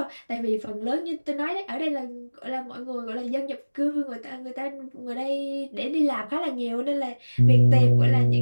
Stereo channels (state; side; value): inverted; both; correlation -1.00